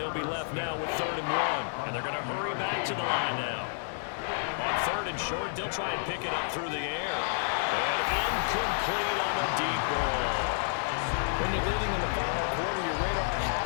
be left now with 3rd and 1. And they're going to hurry back to the line now. On 3rd and short, they'll try and pick it up through the air. And incomplete on the deep ball. When you're leading in the final quarter, your radar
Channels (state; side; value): silent; right; digital silence